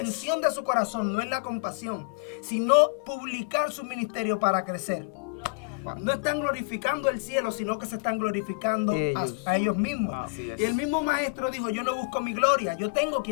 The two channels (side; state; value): right; quieter; 31.5 dB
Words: de su corazón no es la compasión, sino publicar su ministerio para crecer. No están glorificando el cielo, sino que se están glorificando a ellos mismos. Y el mismo maestro dijo, yo no busco mi gloria, yo tengo